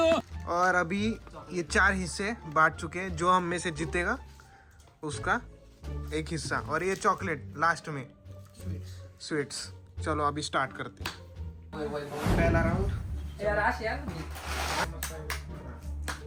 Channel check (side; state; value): both; identical; correlation 1.00